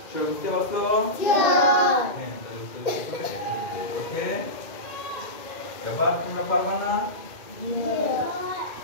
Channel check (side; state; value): right; late; 2.1 ms